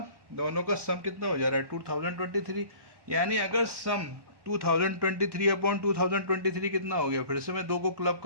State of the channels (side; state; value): left; late; 1.1 ms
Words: दोनों का सम कितना हो जा रहा है 2023। यानी अगर सम 2023/2023 कितना हो गया, फिर से मैं 2 को क्लब